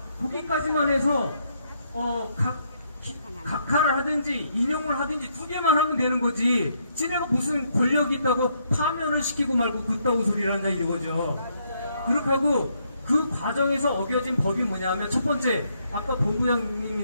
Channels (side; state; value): both; inverted; correlation -0.74